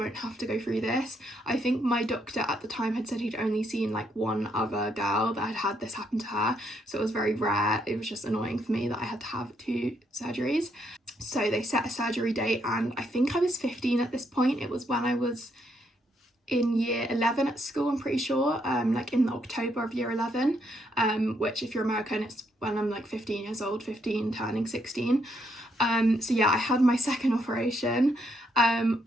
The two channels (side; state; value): both; normal; correlation 0.75